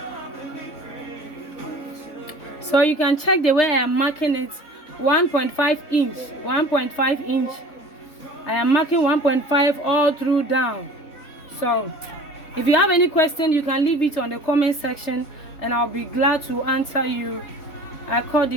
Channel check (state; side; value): late; right; 3.5 ms